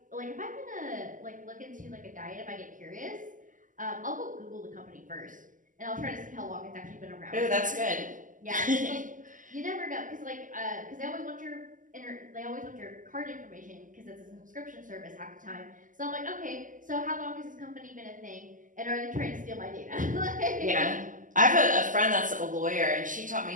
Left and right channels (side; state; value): left; late; 0.38 ms